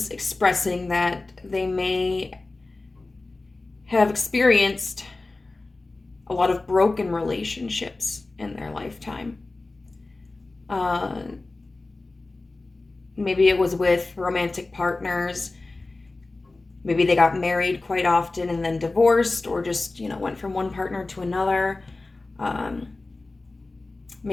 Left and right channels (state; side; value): quieter; right; 3.2 dB